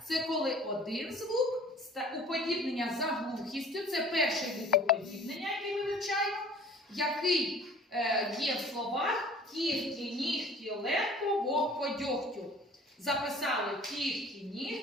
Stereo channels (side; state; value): both; normal; correlation 0.48